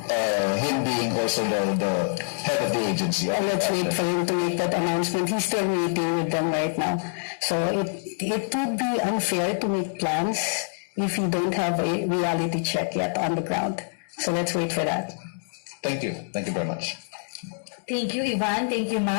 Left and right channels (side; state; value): right; silent; digital silence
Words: him being also the head of the agency? And let's wait for him to make that announcement. He's still meeting with them right now. So it would be unfair to make plans if you don't have a reality check yet on the ground. So let's wait for that. Thank you. Thank you very much. Thank you, Ivan. Thank you,